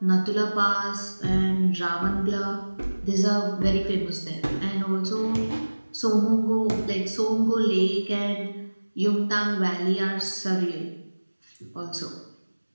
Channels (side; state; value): both; inverted; correlation -1.00